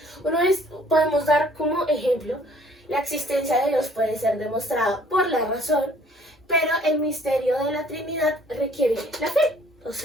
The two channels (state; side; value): normal; both; correlation 0.58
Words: Podemos dar como ejemplo, la existencia de Dios puede ser demostrada por la razón, pero el misterio de la Trinidad requiere la fe. O